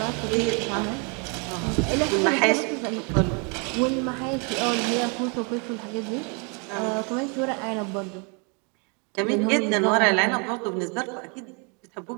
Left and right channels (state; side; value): quieter; left; 34.7 dB